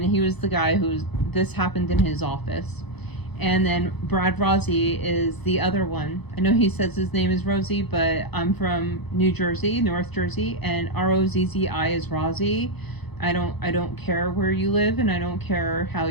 he was the guy this happened in his office. And then Brad Rossi is the other one. I know he says his name is Rosie, but I'm from New Jersey, North Jersey, and Rozzi is Rossi. I don't care where you live, and I don't care how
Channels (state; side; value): late; right; 0.99 ms